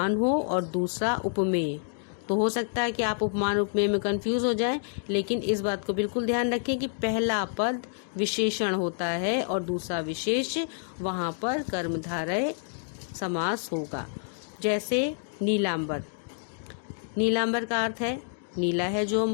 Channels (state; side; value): silent; right; digital silence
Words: हो और दूसरा उपमेय। तो हो सकता है कि आप उपमान उपमेय में कंफ्यूज हो जाएं, लेकिन इस बात को बिल्कुल ध्यान रखें कि पहला पद विशेषण होता है और दूसरा विशेष, वहाँ पर कर्मधारय समास होगा। जैसे नीलांबर। नीलांबर का अर्थ है नीला है जो